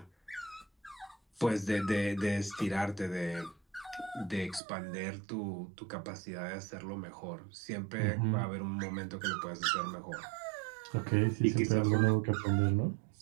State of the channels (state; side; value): drops out; left; at 4.6 s